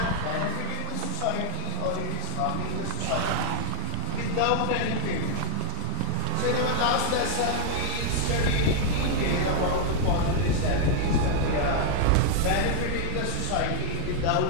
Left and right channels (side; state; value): both; different; correlation 0.00